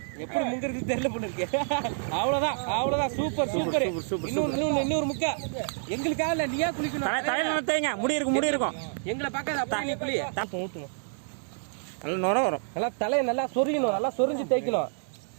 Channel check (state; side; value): silent; left; digital silence